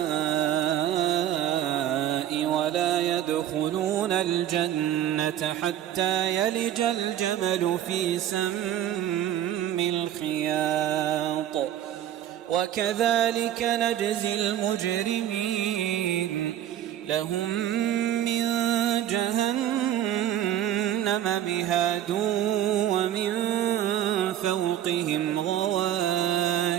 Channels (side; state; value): left; quieter; 11.4 dB